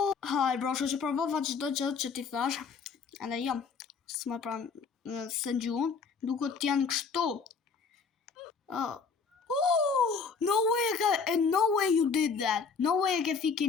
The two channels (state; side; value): quieter; right; 5.3 dB